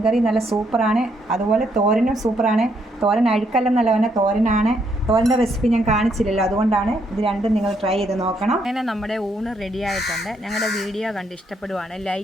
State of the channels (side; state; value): both; normal; correlation 0.74